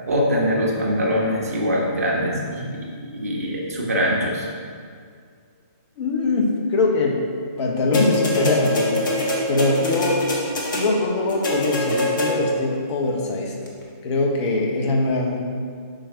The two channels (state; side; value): inverted; both; correlation -0.47